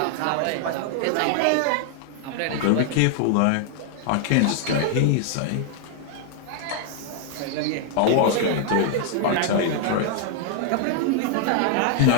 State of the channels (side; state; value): both; different; correlation 0.00